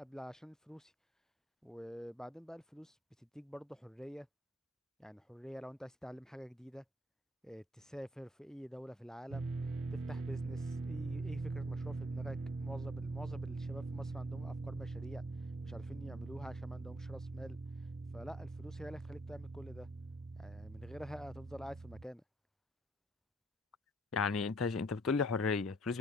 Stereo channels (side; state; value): both; normal; correlation 0.65